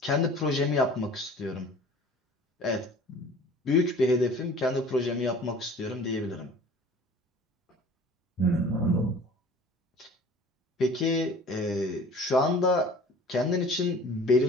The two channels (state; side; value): normal; both; correlation 0.46